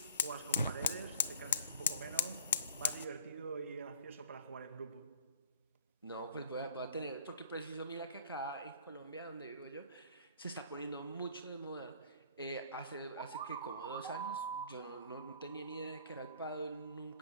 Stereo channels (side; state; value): both; inverted; correlation -0.51